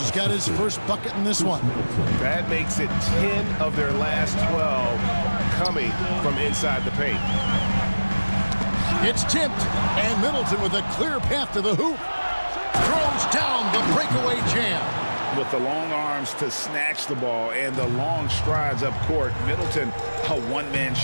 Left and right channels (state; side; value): inverted; both; correlation -1.00